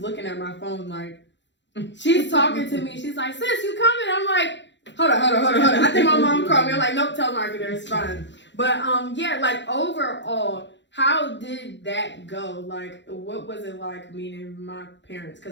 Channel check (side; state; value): right; late; 0.52 ms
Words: looking at my phone like, she's talking to me. She's like, "Sis, you coming?" I'm like, hold on. I think my mom called me. I'm like, nope, telemarketer, it's fine. But yeah, like overall, how did that go? Like, what was it like meeting my parents?